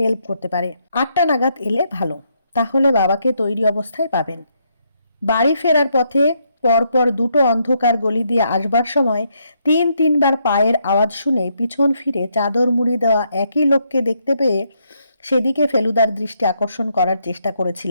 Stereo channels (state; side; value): inverted; both; correlation -0.76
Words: করতে পারে। 8টা নাগাদ এলে ভালো, তাহলে বাবাকে তৈরি অবস্থায় পাবেন। বাড়ি ফেরার পথে পরপর 2টো অন্ধকার গলি দিয়ে আসবার সময় 3-3 বার পায়ের আওয়াজ শুনে পিছন ফিরে চাদর মুড়ি দেওয়া একই লোককে দেখতে পেয়ে সেদিকে ফেলুদার দৃষ্টি আকর্ষণ করার চেষ্টা